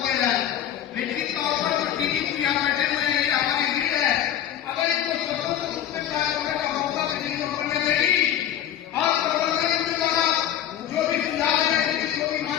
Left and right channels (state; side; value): quieter; right; 10.6 dB